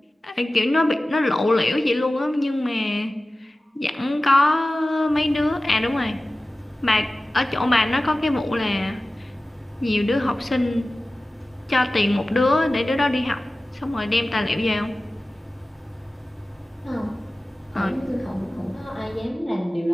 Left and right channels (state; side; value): normal; both; correlation 0.96